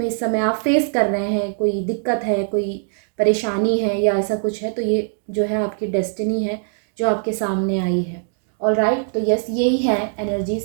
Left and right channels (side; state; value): left; silent; digital silence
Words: इस समय आप फेस कर रहे हैं, कोई दिक्कत है, कोई परेशानी है या ऐसा कुछ है, तो ये जो है आपकी डेस्टिनी है जो आपके सामने आई है। ऑलराइट, तो यस यही है